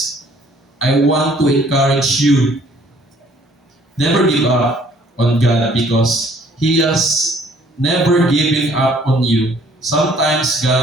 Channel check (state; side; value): normal; both; correlation 0.59